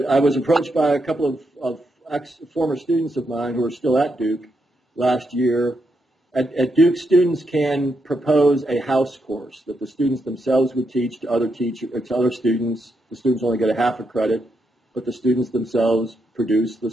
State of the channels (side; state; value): both; normal; correlation 0.81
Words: I was approached by a couple of former students of mine who are still at Duke last year At Duke, students can propose a house course that the students themselves would teach to other students. The students only get a half a credit, but the students themselves produce